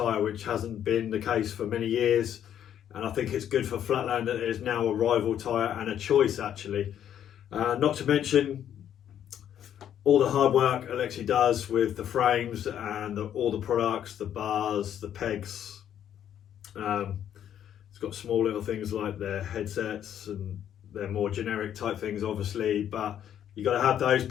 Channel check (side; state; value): right; quieter; 10.0 dB